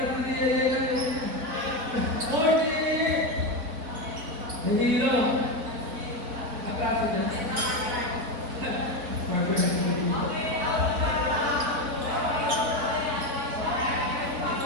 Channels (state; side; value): late; left; 3.9 ms